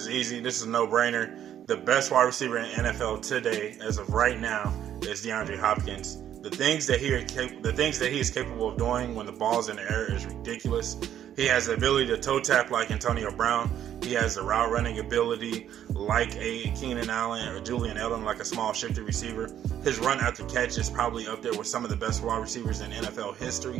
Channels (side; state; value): left; quieter; 10.5 dB